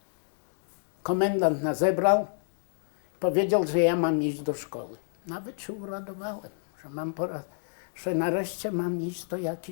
komendant nas zebrał i powiedział, że ja mam iść do szkoły. Nawet się uradowałem, że nareszcie mam iść do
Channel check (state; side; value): silent; right; digital silence